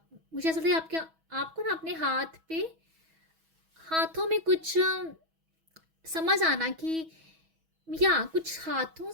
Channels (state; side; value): late; left; 6.2 ms